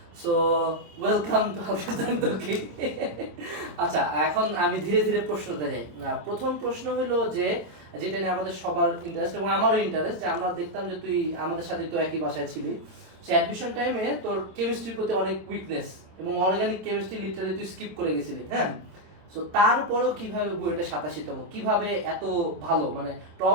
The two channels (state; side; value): late; left; 27 ms